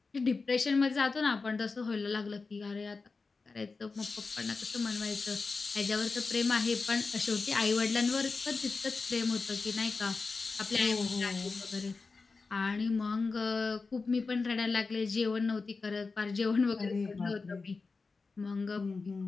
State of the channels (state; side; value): quieter; right; 4.2 dB